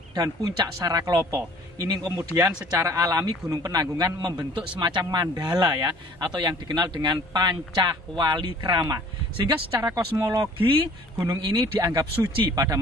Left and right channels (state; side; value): normal; both; correlation 0.52